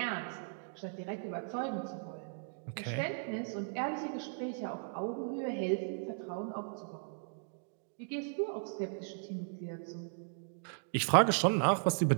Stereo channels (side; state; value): left; silent; digital silence